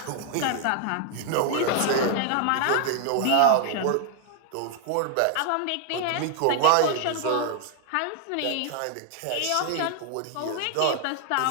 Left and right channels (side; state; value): both; different; correlation 0.00